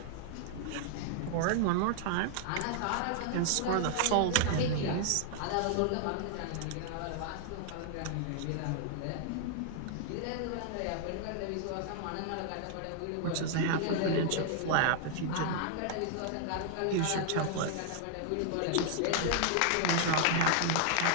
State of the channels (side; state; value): both; different; correlation 0.00